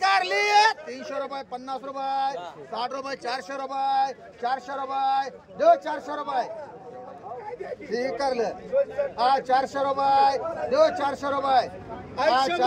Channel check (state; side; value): identical; both; correlation 1.00